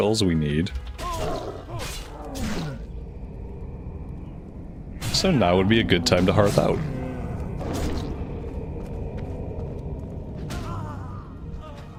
we need. So now would be a good time to hearth out.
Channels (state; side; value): identical; both; correlation 1.00